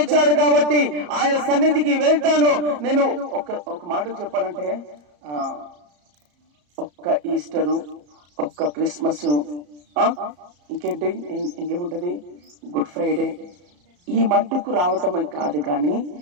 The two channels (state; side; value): late; left; 34 ms